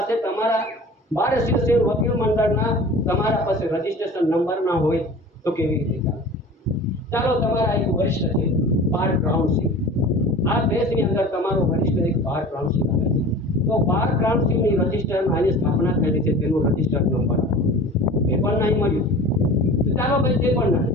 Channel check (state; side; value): normal; both; correlation 0.39